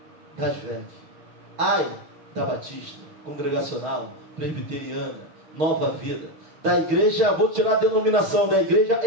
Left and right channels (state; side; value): late; left; 6.3 ms